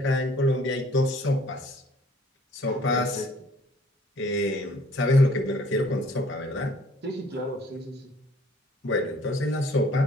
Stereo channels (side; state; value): both; normal; correlation 0.57